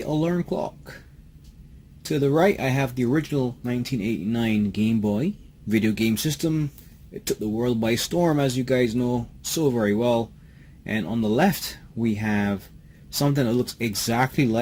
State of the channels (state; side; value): identical; both; correlation 1.00